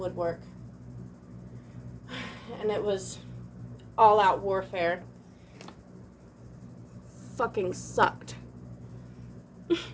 And it was all out warfare. Fucking sucked.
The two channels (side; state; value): both; identical; correlation 1.00